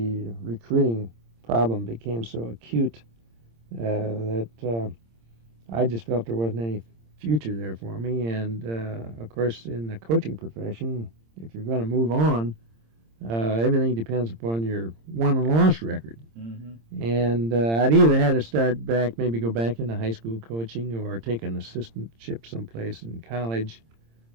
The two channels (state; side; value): late; left; 26 ms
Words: recruiting problem became so acute that I just felt there wasn't any future there for me. And, of course, in the coaching profession, if you're going to move on, everything depends upon your won and loss record. And I'd either had to start back, maybe go back into high school coaching or take an assistantship someplace in college,